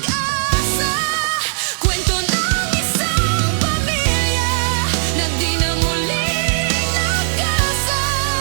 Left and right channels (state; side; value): silent; left; digital silence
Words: kwento ng isang pamilya na